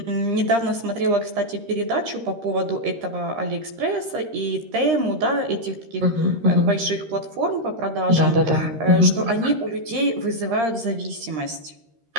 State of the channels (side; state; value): left; late; 13 ms